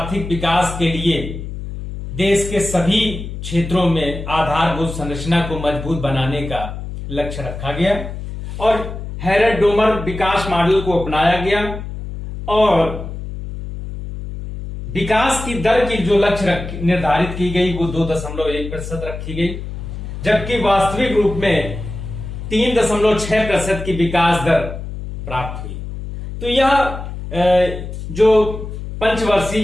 विकास के लिए देश के सभी क्षेत्रों में आधारभूत संरचना को मजबूत बनाने का लक्ष्य रखा गया और हेरेट-डोमर विकास मॉडल को अपनाया गया। और विकास की दर की जो लक्ष्य निर्धारित की गई वो 2.1% रखी गई, जबकि वास्तविक रूप में 3.6% की विकास दर प्राप्त हुई। तो यह जो पंचवर्षीय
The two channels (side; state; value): left; noise; hum, 8 dB below the sound